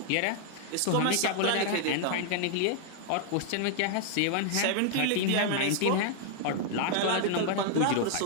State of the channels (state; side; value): different; both; correlation 0.00